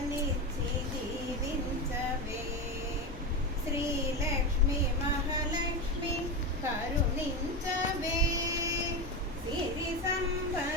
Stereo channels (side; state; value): both; normal; correlation 0.18